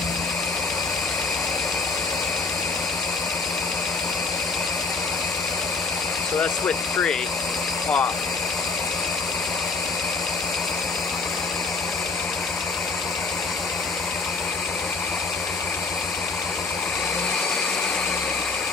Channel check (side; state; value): right; quieter; 4.1 dB